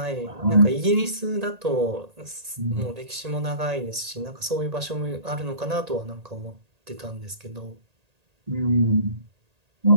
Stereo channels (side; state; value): left; late; 1.8 ms